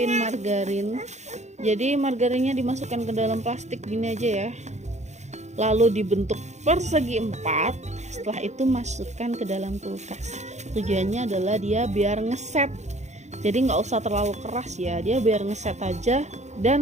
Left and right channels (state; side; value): late; left; 0.33 ms